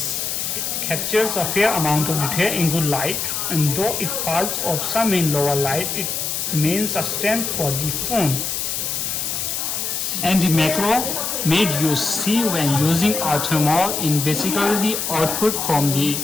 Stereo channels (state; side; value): noise; left; hiss, 2 dB below the sound